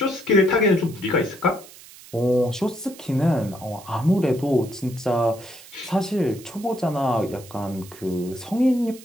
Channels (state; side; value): noise; right; hiss, 19 dB below the sound